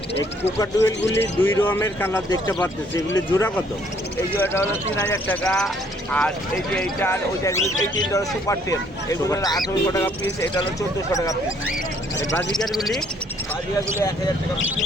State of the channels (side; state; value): both; normal; correlation 0.64